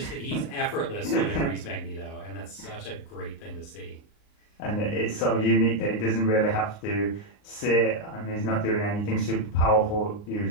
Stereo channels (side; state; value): right; late; 39 ms